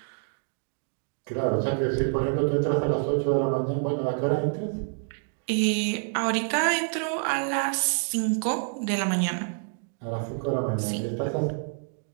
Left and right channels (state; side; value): silent; left; 60 dB below the other